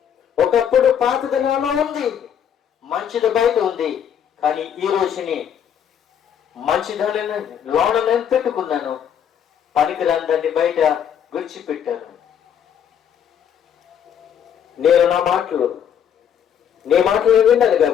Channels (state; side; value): quieter; right; 8.7 dB